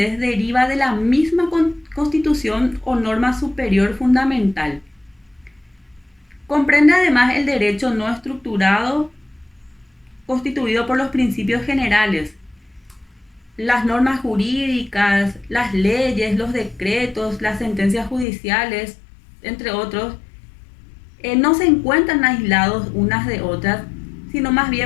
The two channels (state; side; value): drops out; right; at 18.2 s